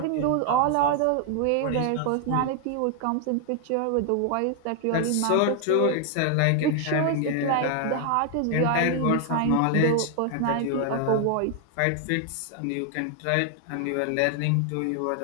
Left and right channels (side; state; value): both; different; correlation 0.00